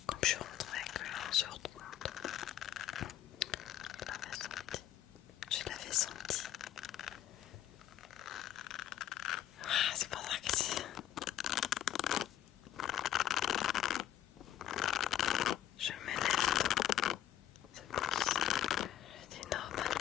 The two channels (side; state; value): right; quieter; 11.7 dB